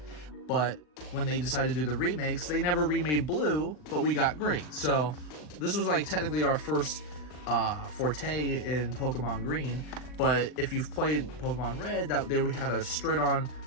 But when they decided to do the remakes, they never remade Blue, but we got Green. So this was like technically our first forte in Pokemon Green. But if you've played Pokemon Red, they had a straight-on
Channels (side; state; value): right; late; 39 ms